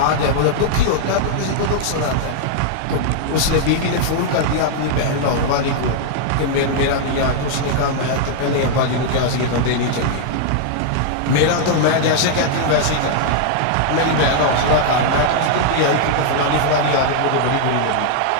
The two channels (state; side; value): different; both; correlation -0.01